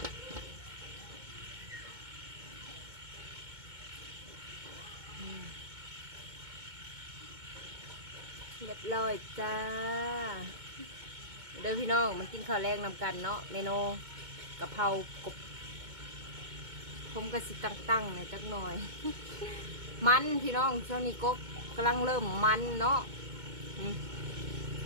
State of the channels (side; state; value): left; late; 2.2 ms